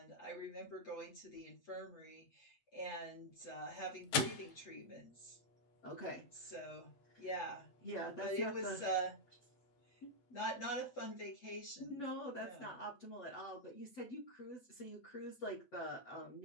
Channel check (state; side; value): late; right; 8.3 ms